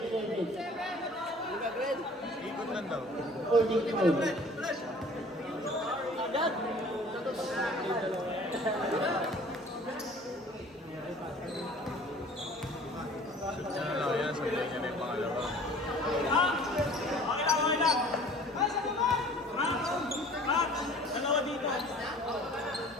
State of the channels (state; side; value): normal; both; correlation 0.48